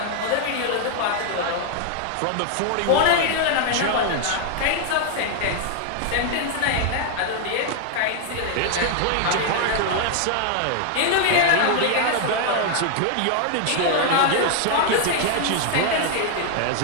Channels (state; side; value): different; both; correlation 0.00